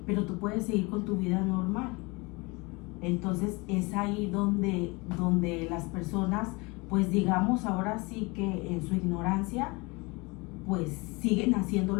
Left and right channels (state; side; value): quieter; right; 26.4 dB